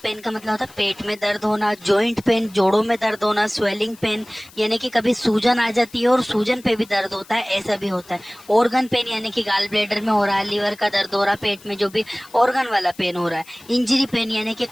पेन का मतलब होता है पेट में दर्द होना, जॉइंट पेन जोड़ों में दर्द होना, स्वेलिंग पेन यानी कि कभी सूजन आ जाती है और सूजन पे भी दर्द होता है, ऐसा भी होता है। ऑर्गन पेन यानी कि गाल ब्लैडर में हो रहा है, लीवर का दर्द हो रहा है, पेट में जो भी ऑर्गन वाला पेन हो रहा है। इंजरी पेन यानी कि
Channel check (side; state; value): left; noise; hiss, 23 dB below the sound